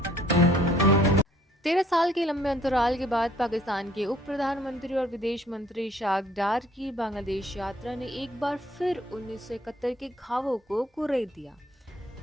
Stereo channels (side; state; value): both; normal; correlation 0.61